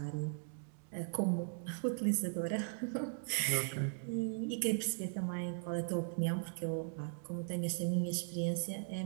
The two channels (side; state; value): left; silent; digital silence